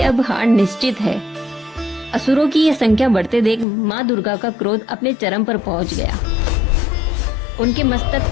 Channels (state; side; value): drops out; right; at 3.7 s